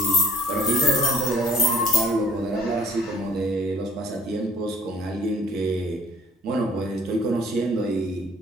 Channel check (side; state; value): both; normal; correlation 0.54